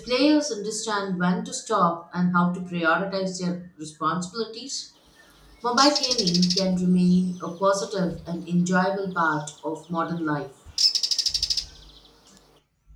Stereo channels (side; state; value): both; identical; correlation 1.00